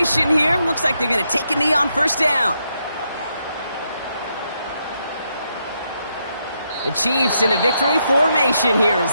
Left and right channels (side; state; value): both; inverted; correlation -0.80